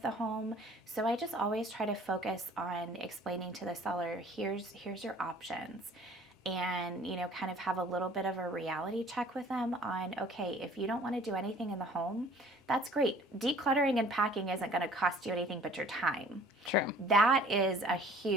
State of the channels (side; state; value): both; normal; correlation 0.52